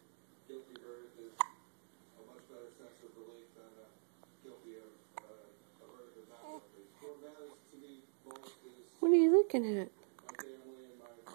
What are you looking at?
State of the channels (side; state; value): left; silent; digital silence